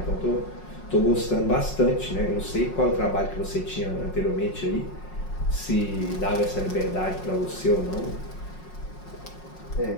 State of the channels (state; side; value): late; right; 5.5 ms